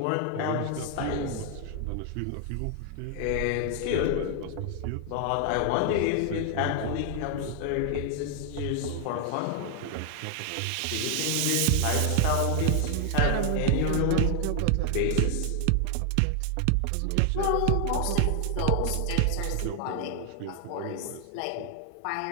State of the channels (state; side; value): different; both; correlation 0.00